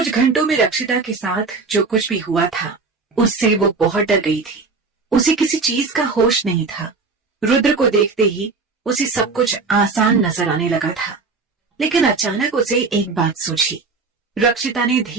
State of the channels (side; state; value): left; quieter; 4.2 dB